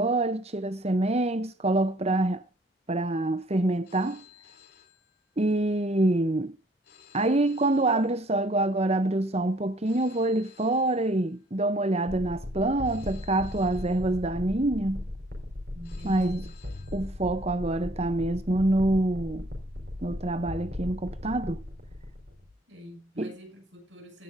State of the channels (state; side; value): normal; both; correlation 0.59